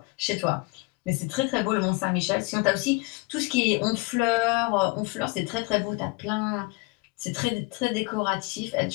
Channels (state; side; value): quieter; right; 26.7 dB